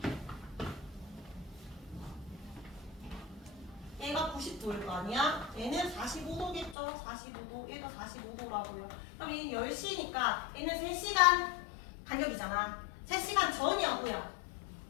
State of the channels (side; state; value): right; drops out; at 6.8 s